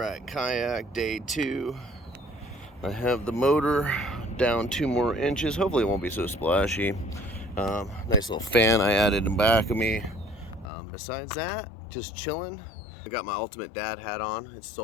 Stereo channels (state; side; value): drops out; right; at 10.7 s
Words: kayak day 2. I have the motor down 2 more inches. Hopefully it won't be so splashy. Nice little fan I added in back of me. Besides that, just chilling. I got my Ultimate Dad hat on. It's